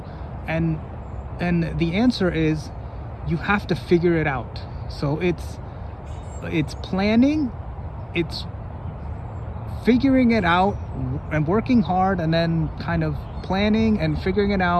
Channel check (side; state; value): both; identical; correlation 1.00